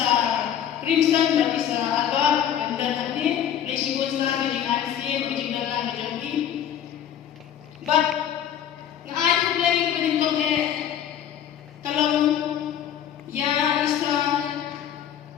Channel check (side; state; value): right; quieter; 9.8 dB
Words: crimson but isa alba dan nanti Malaysia pun sana jadi ASEAN jadi dalam jadi. But I play beningkong kalau ya isa